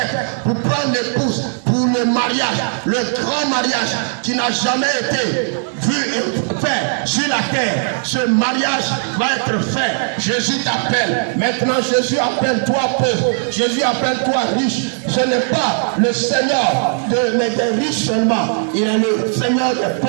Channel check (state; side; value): silent; left; digital silence